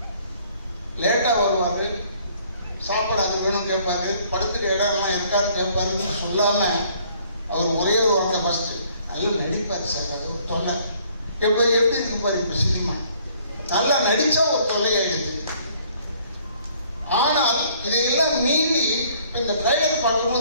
லேட்டா வருவாரு, சாப்பாடு அது வேணும் கேட்பாரு, படுத்துற இடம்லாம் இருக்காருன்னு கேட்பாருன்னு சொல்லாம அவர் ஒரே ஒரு வார்த்தை ஃபர்ஸ்ட் நல்லா நடிப்பாரு சார். அது ஒரு தொல்லை. எப்போ எப்படி இருக்கு பாரு இப்ப சினிமா, நல்லா நடிச்சா ஒரு தொல்லையாயிடுது. ஆனால் இதையெல்லாம் மீறி இந்த ட்ரைலர்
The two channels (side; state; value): both; inverted; correlation -0.61